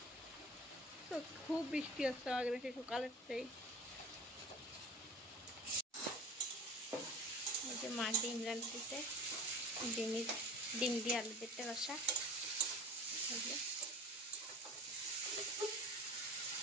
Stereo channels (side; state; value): both; normal; correlation 0.40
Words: তো খুব বৃষ্টি হচ্ছে আমাদের সে সকালের থেকে। এই যে মা ডিম রাঁধতেছে, ডিম দিয়ে আলু পেটে রসা।